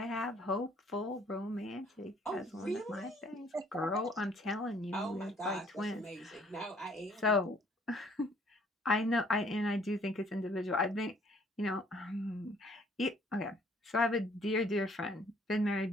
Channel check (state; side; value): normal; both; correlation 0.61